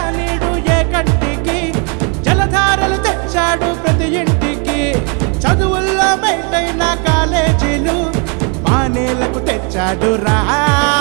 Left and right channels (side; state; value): left; quieter; 35.6 dB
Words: నీడు ఏ కంటికి జలధారలు తెచ్చాడు ప్రతి ఇంటికి చదువుల్లో మెంటైన కాలేజీలు మానేలకు తెచ్చాడు రా